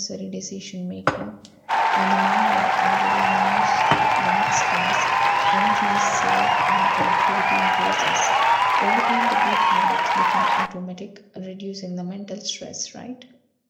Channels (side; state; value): both; identical; correlation 1.00